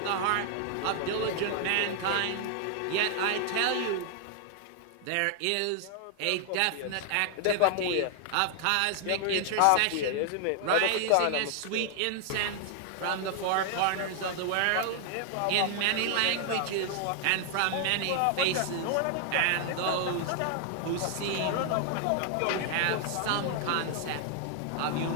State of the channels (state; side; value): different; both; correlation 0.00